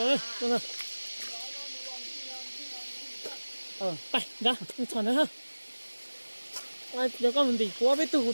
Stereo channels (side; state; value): both; inverted; correlation -1.00